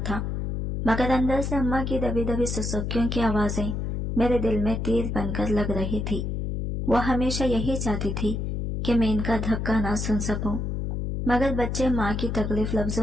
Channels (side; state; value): left; noise; hum, 2 dB below the sound